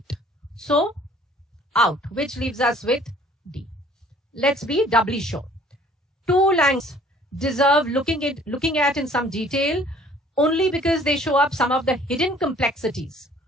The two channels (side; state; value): both; normal; correlation 0.55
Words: So, out, which leaves us with D. Let's be doubly sure. Two languages deserve looking at in some detail only because they show up some of the hidden complexities